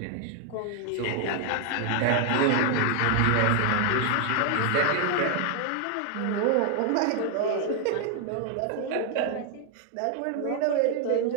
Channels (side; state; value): both; different; correlation 0.00